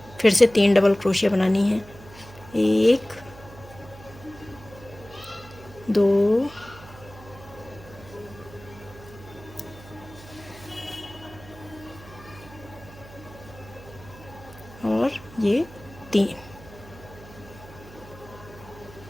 फिर से 3 डबल क्रोशिया बनानी है। 1 2 और ये 3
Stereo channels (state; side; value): noise; right; hum, 18 dB below the sound